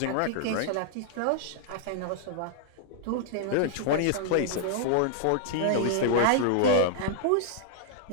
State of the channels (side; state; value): both; different; correlation -0.01